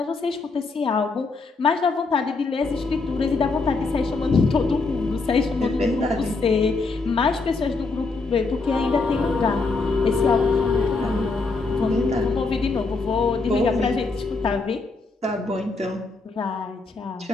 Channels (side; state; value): right; quieter; 3.8 dB